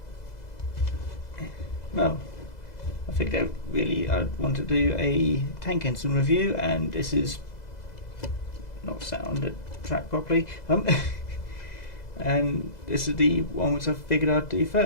well, I think that really I want to do a tank engine review, and this is not sat on the track properly, and this is the one which I figured I'd do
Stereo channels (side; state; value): right; late; 2.0 ms